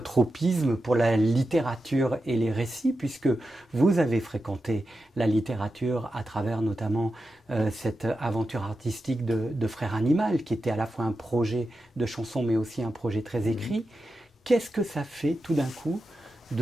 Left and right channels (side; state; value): both; normal; correlation 0.90